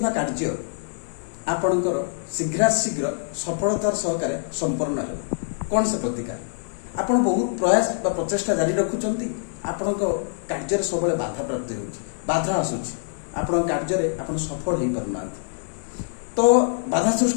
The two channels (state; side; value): silent; right; digital silence